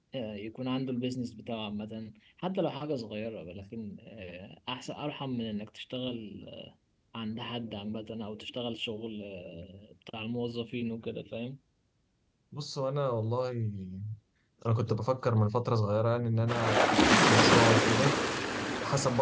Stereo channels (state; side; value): identical; both; correlation 1.00